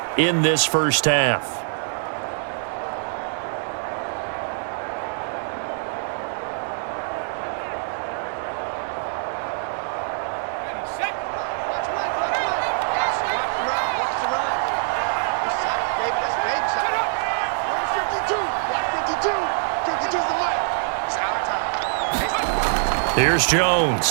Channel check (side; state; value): left; silent; 60 dB below the other